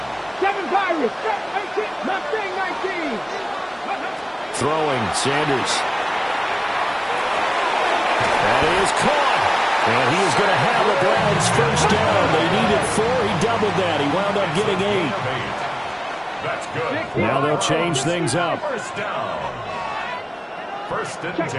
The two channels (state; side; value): identical; both; correlation 1.00